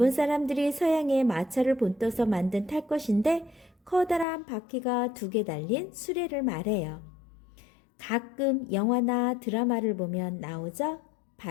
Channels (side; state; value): right; drops out; at 4.2 s